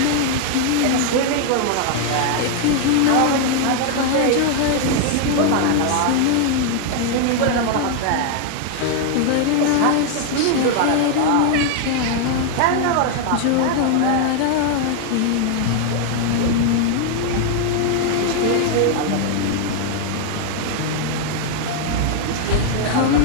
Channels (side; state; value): both; different; correlation 0.00